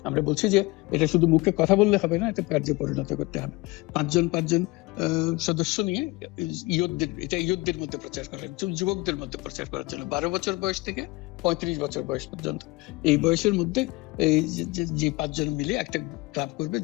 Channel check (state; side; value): quieter; right; 22.9 dB